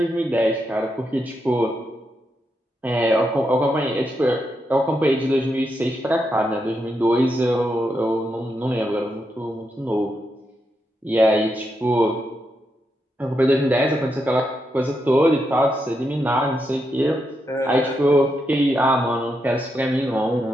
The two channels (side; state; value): both; normal; correlation 0.83